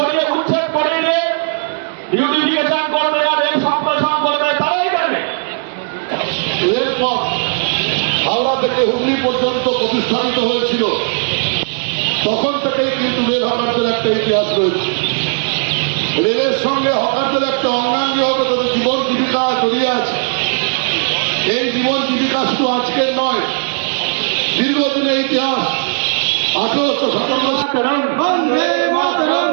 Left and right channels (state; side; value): silent; left; digital silence